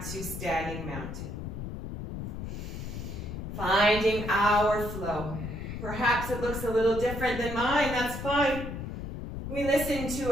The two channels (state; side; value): noise; left; rumble, 6 dB below the sound